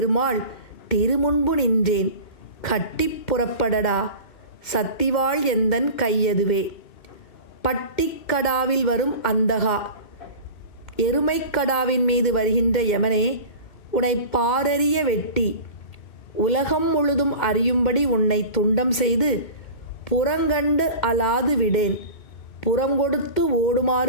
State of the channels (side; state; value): right; late; 2.1 ms